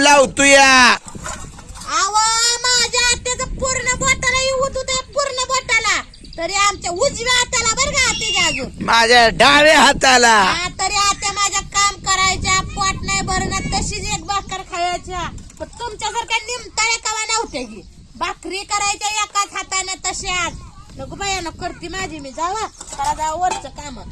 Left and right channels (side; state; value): both; identical; correlation 1.00